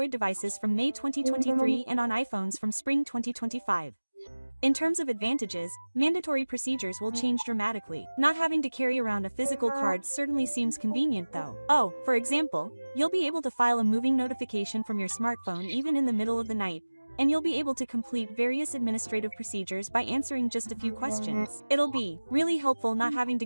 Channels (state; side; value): inverted; both; correlation -1.00